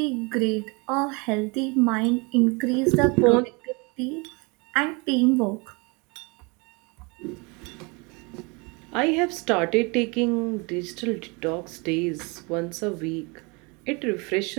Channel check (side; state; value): left; quieter; 29.0 dB